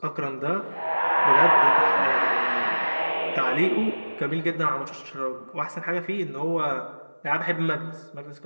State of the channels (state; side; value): inverted; both; correlation -1.00